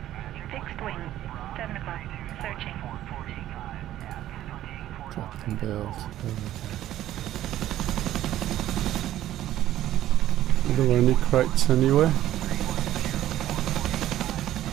Fixed wing. 7 o'clock. Searching. Drop and build. Are there any crates anywhere?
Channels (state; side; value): quieter; left; 13.1 dB